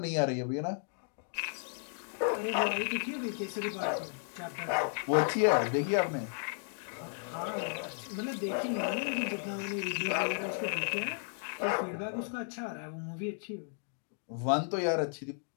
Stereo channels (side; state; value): right; silent; 55 dB below the other